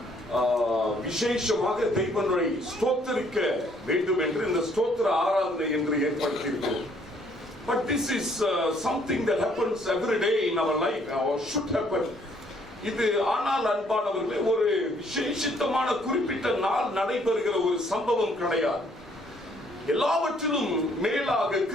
விசேஷமாக தெய்வங்களை ஸ்தோத்திரிக்க வேண்டும் என்று இந்த ஸ்தோத்திர ஆராதனை என்று ஏற்படுத்தியிருக்கிறோம். But this is something that happens every day in our life, or should happen. இது ஆனால் அன்பானவர்களே, ஒரு விசேஷித்தமான குறிப்பிட்ட நாள் நடைபெறுகிற ஒரு சம்பவம் கிடையாது. எல்லாவற்றிலும் மேலாக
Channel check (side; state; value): both; normal; correlation 0.64